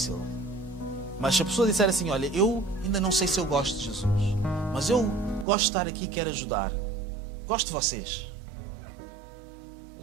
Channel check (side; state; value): left; drops out; at 5.5 s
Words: Mas se a pessoa disser assim, olha, eu ainda não sei se eu gosto de Jesus, mas eu gosto de estar aqui e quero ajudar. Gosto de vocês.